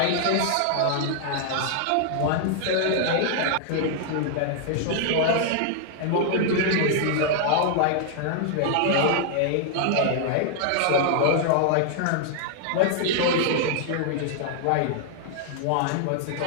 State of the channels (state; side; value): different; both; correlation 0.00